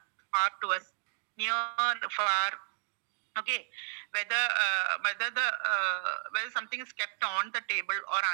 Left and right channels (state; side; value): silent; left; 56 dB below the other